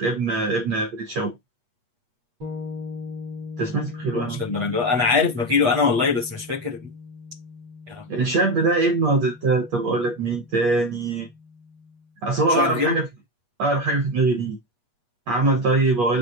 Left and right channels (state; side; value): late; left; 8.4 ms